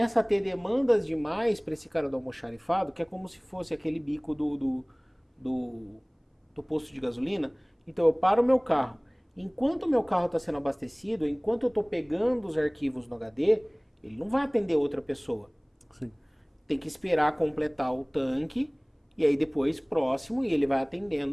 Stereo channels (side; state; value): both; identical; correlation 1.00